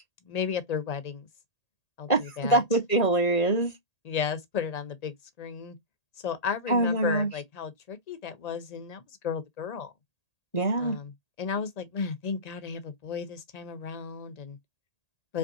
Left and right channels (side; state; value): right; late; 1.8 ms